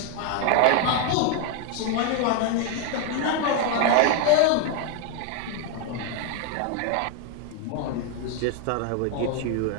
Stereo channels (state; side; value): different; both; correlation 0.00